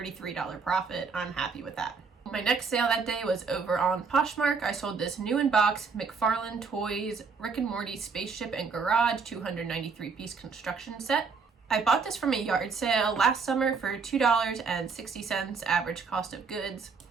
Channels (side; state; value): left; quieter; 5.1 dB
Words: profit. I'm happy with that. My next sale that day was over on Poshmark. I sold this new in box McFarlane Toys Rick and Morty Spaceship and Garage 293 piece construction set. I bought this from a yard sale last summer for $2.60 average cost of goods.